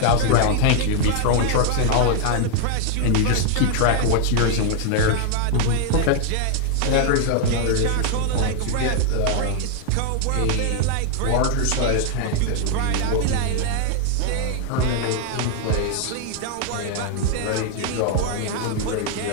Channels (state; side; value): different; both; correlation 0.00